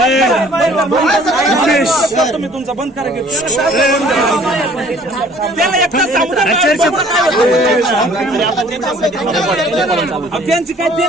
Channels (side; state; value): both; normal; correlation 0.55